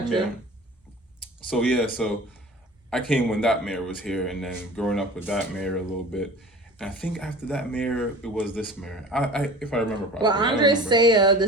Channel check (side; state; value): both; normal; correlation 0.40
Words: Yeah. So I came when that mayor was here, and then growing up with that mayor a little bit. And I think after that mayor, it was this mayor. I if I remember properly. Well, Andre Saya,